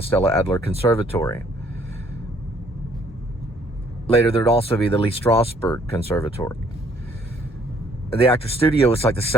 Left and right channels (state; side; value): normal; both; correlation 0.63